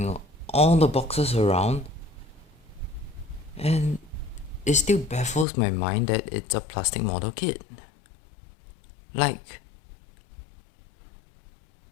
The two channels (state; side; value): drops out; right; at 5.5 s